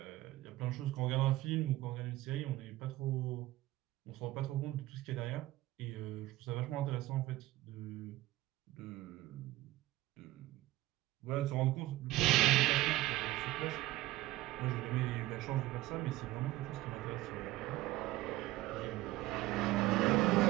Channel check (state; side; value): quieter; left; 16.9 dB